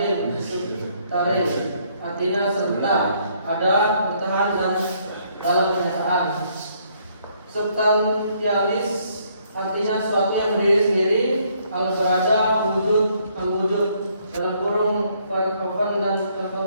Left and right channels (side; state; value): both; inverted; correlation -0.68